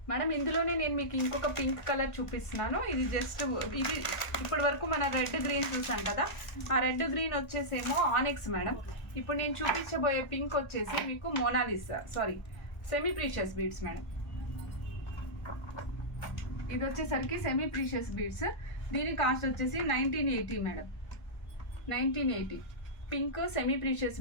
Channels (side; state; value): right; late; 1.5 ms